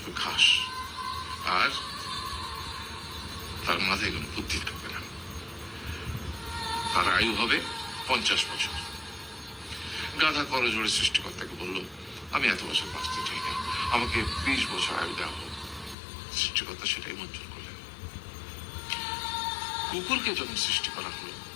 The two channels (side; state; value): right; drops out; at 16.0 s